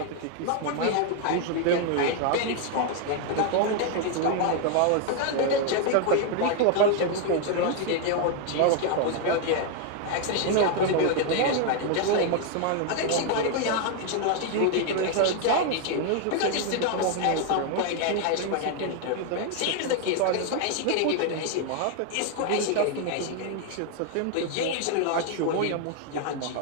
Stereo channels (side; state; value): both; different; correlation 0.01